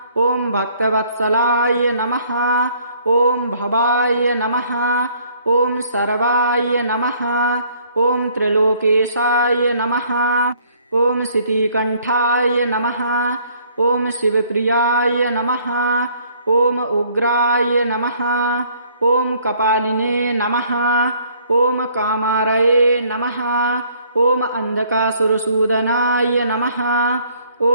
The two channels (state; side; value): inverted; both; correlation -0.62